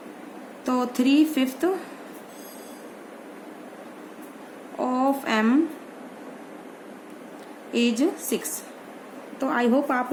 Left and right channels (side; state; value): both; identical; correlation 1.00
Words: तो 3/5 ऑफ m इज 6। तो आई होप